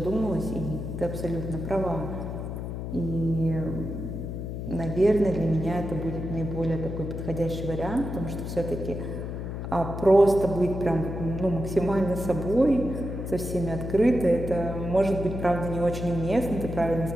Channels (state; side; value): noise; left; hum, 6 dB below the sound